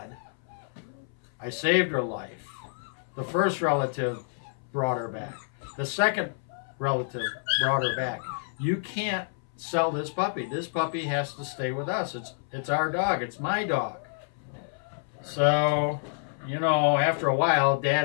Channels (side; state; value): right; silent; 59 dB below the other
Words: I saved her life. The first relative brought her back. The second relative brought her back. You can't sell this puppy. This puppy has to stay with us. It's our dog. It's my dog." So, you know, after a while,